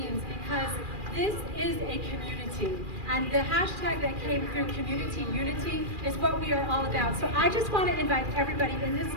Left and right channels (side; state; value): left; late; 2.4 ms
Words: because this is a community. And the hashtag that came through, community unity, is what we are all about. So I just want to invite everybody in this